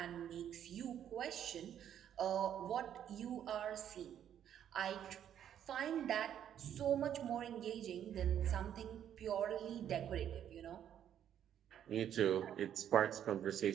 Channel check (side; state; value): left; quieter; 9.9 dB